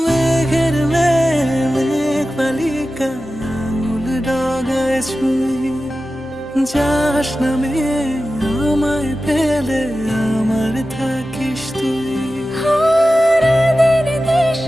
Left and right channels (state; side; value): normal; both; correlation 0.94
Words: মেঘের মেঘ বালিকা আঙুল ডগায় ছুঁয়ে, যাস নামে আমায় পেলে আমার থাকিস তুই।